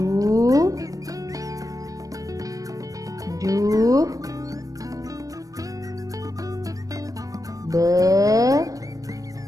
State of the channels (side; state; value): left; late; 0.17 ms